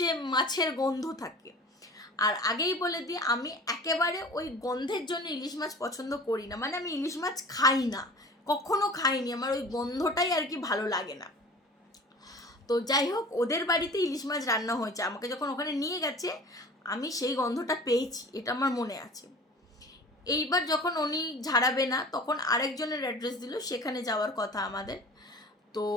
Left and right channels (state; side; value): normal; both; correlation 0.41